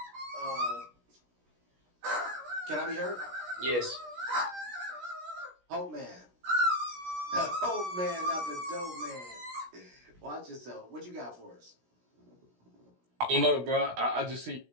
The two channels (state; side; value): late; left; 16 ms